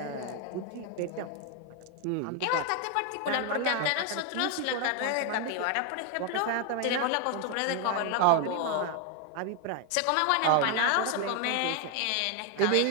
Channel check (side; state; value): both; different; correlation 0.01